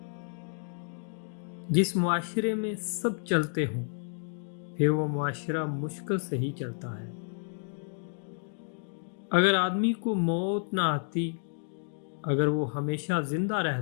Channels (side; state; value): right; silent; digital silence